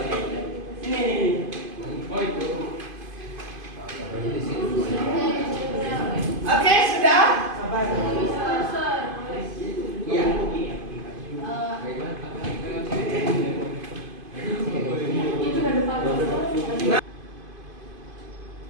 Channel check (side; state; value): left; late; 2.5 ms